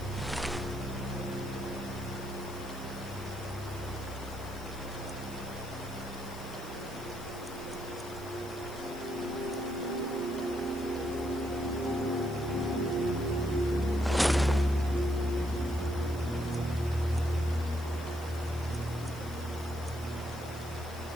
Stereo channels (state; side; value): noise; left; hiss, 19 dB below the sound